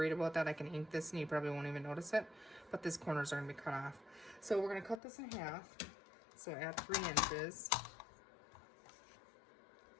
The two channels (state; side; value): drops out; right; at 5.0 s